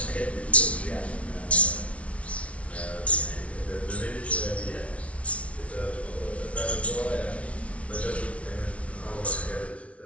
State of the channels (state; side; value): late; right; 0.063 ms